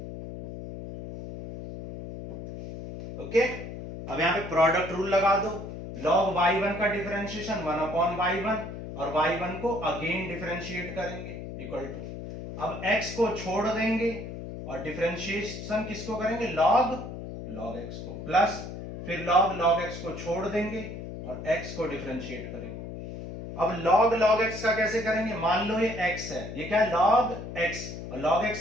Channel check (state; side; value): noise; left; hum, 9 dB below the sound